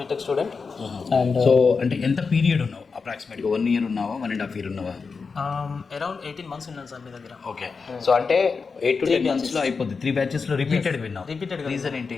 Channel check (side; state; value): right; quieter; 4.9 dB